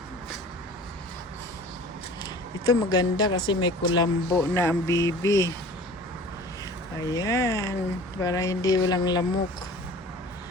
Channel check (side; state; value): both; normal; correlation 0.43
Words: Ito maganda kasi may kulambo na ang baby. Ayan, para hindi walang lamok.